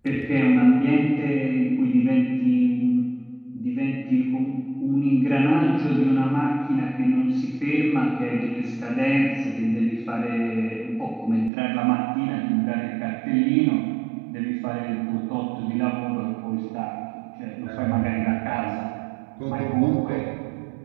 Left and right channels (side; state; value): left; drops out; at 11.5 s